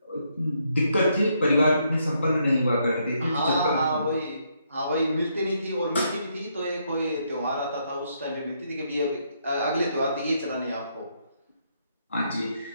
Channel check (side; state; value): both; inverted; correlation -0.75